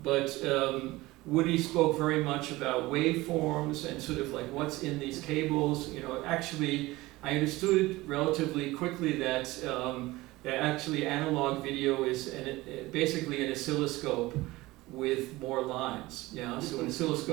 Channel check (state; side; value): quieter; left; 19.6 dB